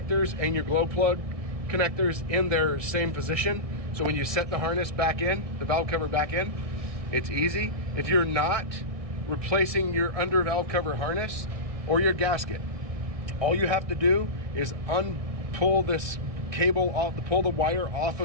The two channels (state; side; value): late; left; 1.6 ms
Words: and your glow plug connectors in their same position. So when you set the harness back in, the valve cover back in, it's easy. If you're not replacing your under valve cover harness or your gasket, all you have to do is pull this cable off, pull the wire off